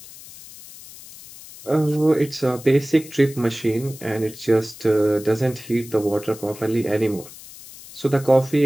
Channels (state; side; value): noise; left; hiss, 17 dB below the sound